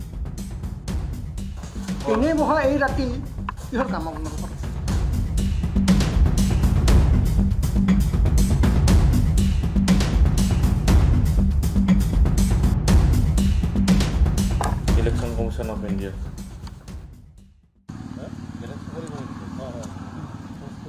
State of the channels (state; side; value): identical; both; correlation 1.00